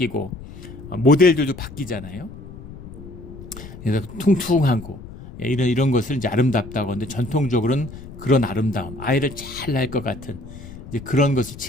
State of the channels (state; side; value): noise; left; rumble, 15 dB below the sound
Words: 모델들도 바뀌잖아요. 그래서 퉁퉁하고 이런 것을 이제 아름답다고 하는데, 전통적으로는 그런 아름다움, 아이를 잘 낳을 것 같은 이제 그런 것을